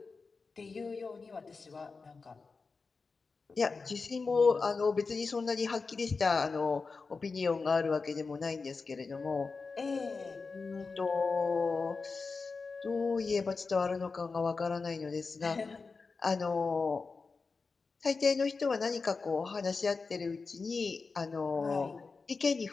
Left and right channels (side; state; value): right; quieter; 4.4 dB